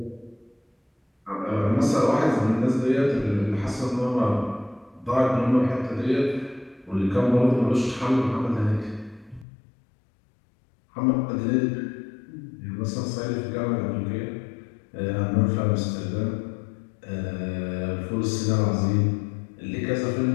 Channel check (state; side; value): drops out; right; at 9.5 s